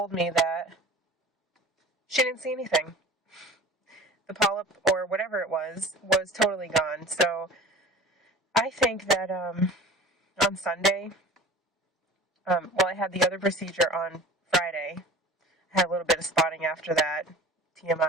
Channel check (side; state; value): both; normal; correlation 0.41